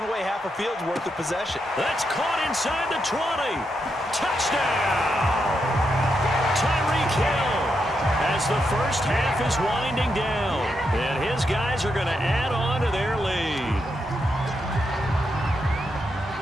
away half a field's worth of possession. That's caught inside the 20. Touchdown! Tyreek Hill as the first half is winding down. And his guys are going to add on to their lead.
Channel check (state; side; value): normal; both; correlation 0.83